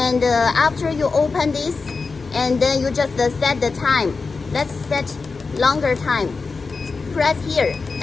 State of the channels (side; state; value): right; quieter; 4.4 dB